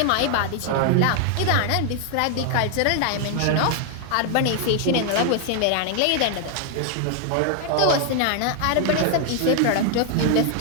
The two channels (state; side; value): different; both; correlation 0.00